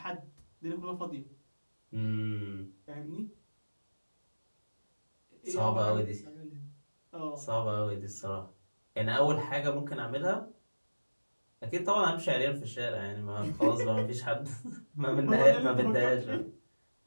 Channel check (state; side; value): inverted; both; correlation -1.00